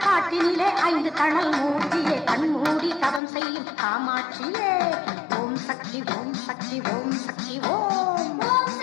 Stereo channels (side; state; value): right; drops out; at 3.2 s